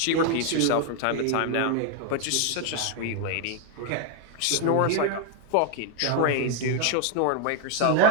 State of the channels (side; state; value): both; different; correlation 0.01